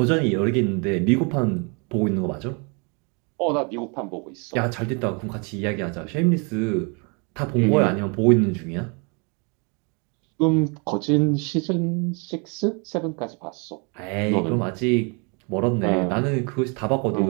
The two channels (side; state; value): left; quieter; 33.9 dB